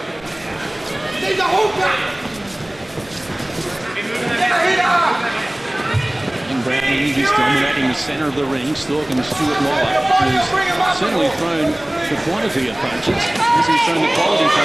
And Brown Enyi is dominating the centre of the ring, stalking Stewart Mollar, who's certainly thrown the quantity of punches. As he's thrown the quality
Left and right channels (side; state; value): right; noise; rumble, 25 dB below the sound